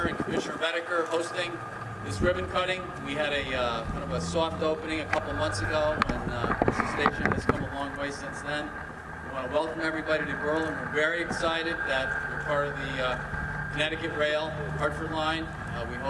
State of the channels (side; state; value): both; identical; correlation 1.00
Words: and Commissioner Redeker hosting this ribbon cutting. We had a kind of a soft opening a couple months ago, and the station has come a long way since then. We want to welcome everybody to Berlin. We're very excited that we're part of the Connecticut Rail Hartford Line. We